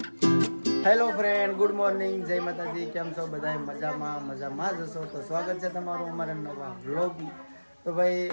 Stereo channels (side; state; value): both; inverted; correlation -1.00